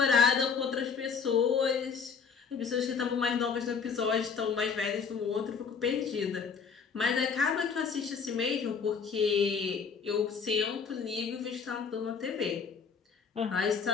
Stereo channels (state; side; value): quieter; right; 5.9 dB